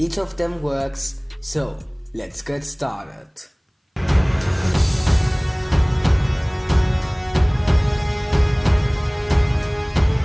of them works, so let's get started.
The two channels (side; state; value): both; identical; correlation 1.00